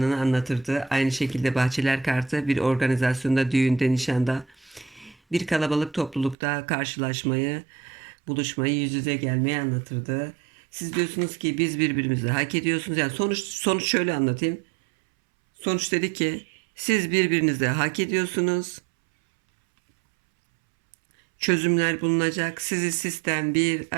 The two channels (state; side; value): drops out; left; at 6.4 s